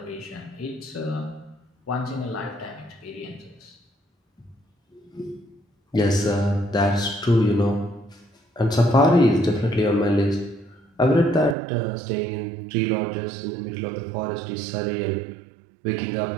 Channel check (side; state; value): left; drops out; at 11.6 s